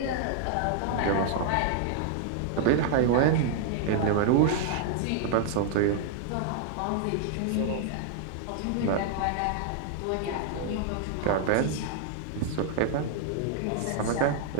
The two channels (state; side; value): different; both; correlation -0.01